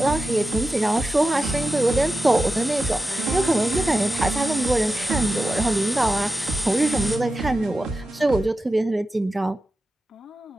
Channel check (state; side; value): normal; both; correlation 0.93